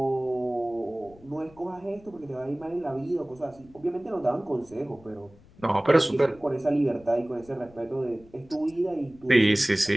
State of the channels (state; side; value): noise; left; rumble, 25 dB below the sound